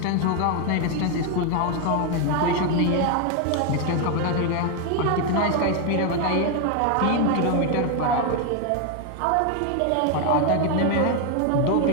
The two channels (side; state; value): both; different; correlation 0.01